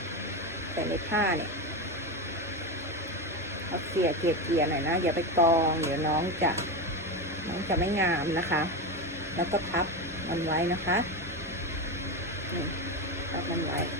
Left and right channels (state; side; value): normal; both; correlation 0.17